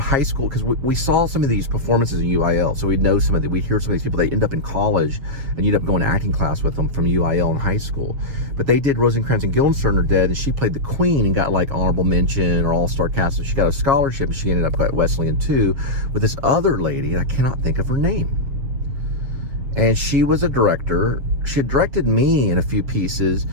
school, because we saw some of these performances in UIL, so we'd hear some of these people. They end up in college, and you'd end up going to acting class with them from UIL in high school. But they did Rosencrantz and Guildenstern Are Dead, and she played the Queen and got like honorable mention or all-star cast. So she got a scholarship, and she ended up at Wesleyan too, with this other lady, I cannot think of her name. And she was a director. She had directed me in a few pieces,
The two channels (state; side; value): late; left; 7.0 ms